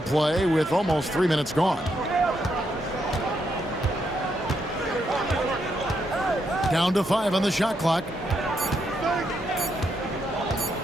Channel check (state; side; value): normal; both; correlation 0.79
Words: play with almost 3 minutes gone. Down to 5 on the shot clock.